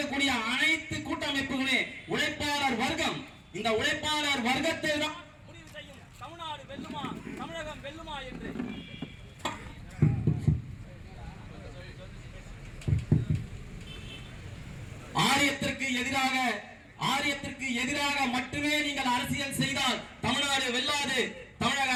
அனைத்து கூட்டமைப்புகளே உழைப்பாளர் வர்க்கம். இந்த உழைப்பாளர் வர்க்கத்தை தான் முடிவு செய்யும் தமிழ்நாடு வெல்லுமா தமிழகம் வெல்லுமா என்று. ஆரியத்திற்கு எதிராக மட்டுமே நீங்கள் அரசியல் செய்தால் தமிழ்நாடு வெல்லாது. தமிழக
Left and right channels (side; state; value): both; identical; correlation 1.00